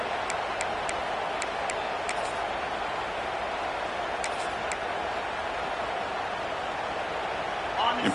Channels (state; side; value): noise; right; hum, 28 dB below the sound